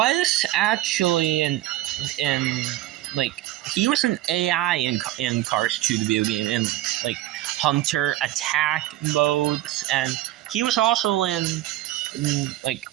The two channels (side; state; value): left; quieter; 15.3 dB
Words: actually in like he was an AI in Cars 2 the video game, in like hunter attack modes, and he was also in like